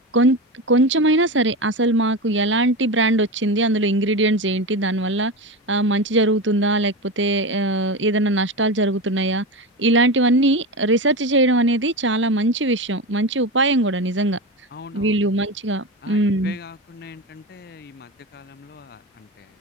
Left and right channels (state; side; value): normal; both; correlation 0.21